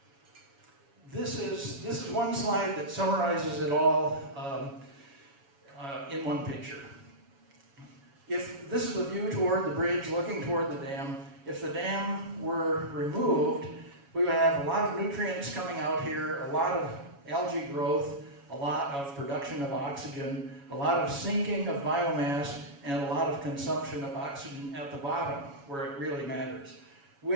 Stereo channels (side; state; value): left; late; 7.2 ms